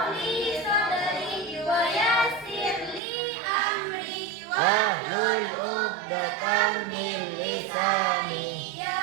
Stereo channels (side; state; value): left; drops out; at 3.0 s